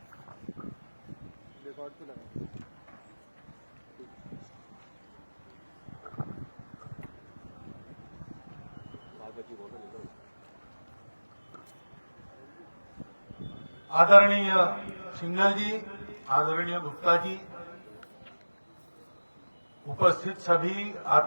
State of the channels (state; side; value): inverted; both; correlation -1.00